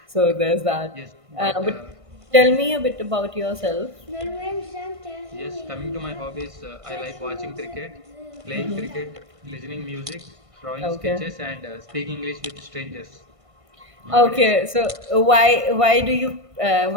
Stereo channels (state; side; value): late; left; 1.5 ms